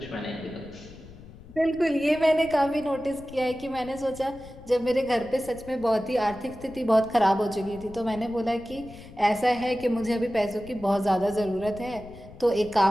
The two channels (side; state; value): left; noise; rumble, 18 dB below the sound